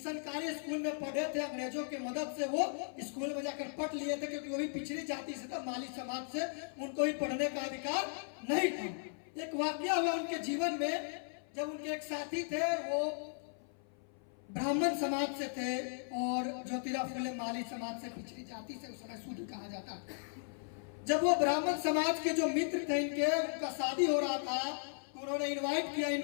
स्कूल में पढ़े थे, अंग्रेजों के मदद से वो स्कूल में जाकर पढ़ लिए थे, क्योंकि वो भी पिछड़ी जाति से था, माली समाज से, उनको भी पढ़ने का अधिकार नहीं था। एक वाकया हुआ उनके जीवन में, जब उनके एक साथी थे, वो ब्राह्मण समाज से थे और ज्योतिराव फुले माली समाज से, पिछड़ी जाति से, उस समय शूद्र कहा जाता था। जब वो ब्राह्मण समाज के जो मित्र थे इनके, उनका शादी हो रहा था, तो उन्होंने इनवाइट किया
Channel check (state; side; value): silent; right; 53 dB below the other